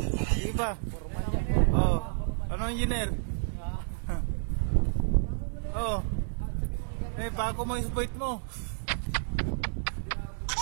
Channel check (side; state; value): left; silent; digital silence